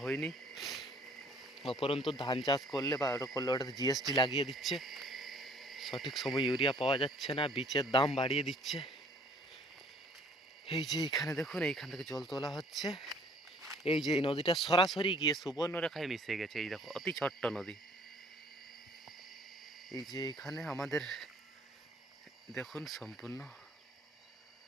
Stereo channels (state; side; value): normal; both; correlation 0.57